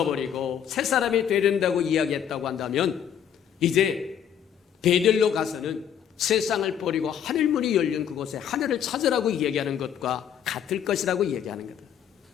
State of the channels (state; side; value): quieter; right; 9.0 dB